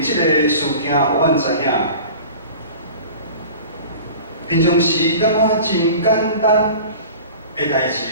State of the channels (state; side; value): inverted; both; correlation -0.40